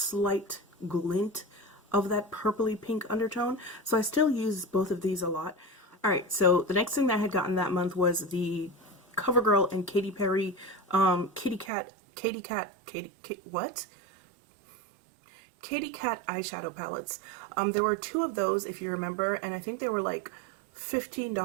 glint of that purpley pink undertone. So I still use both of these a lot. Alright, so the next thing that I had gotten that month was the CoverGirl and Katy Perry Katy Cat eyeshadow palettes. There were two of those, if you remember, and I think they were like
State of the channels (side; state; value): left; drops out; at 11.7 s